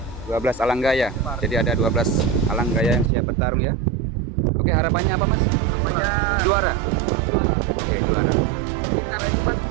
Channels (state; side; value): drops out; left; at 3.1 s